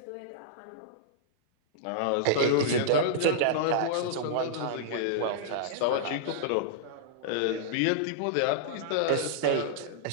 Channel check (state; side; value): different; both; correlation -0.02